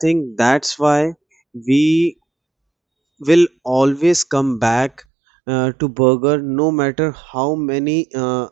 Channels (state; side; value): drops out; left; at 5.1 s